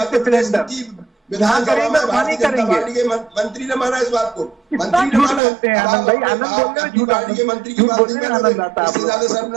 प्रदेश की विधानसभा में भारतीय जनता पार्टी के मंत्री ने माना इस बात को। मंत्री ने माना। पार्टी के मंत्री की बात नहीं मानोगे, इससे ज्यादा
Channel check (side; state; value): left; drops out; at 5.4 s